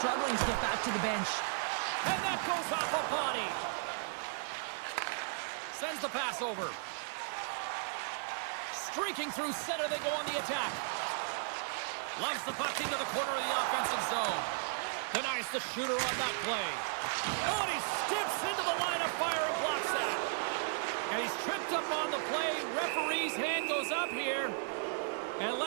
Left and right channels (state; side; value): silent; left; digital silence